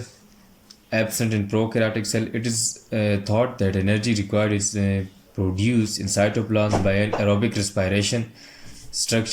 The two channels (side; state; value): both; identical; correlation 1.00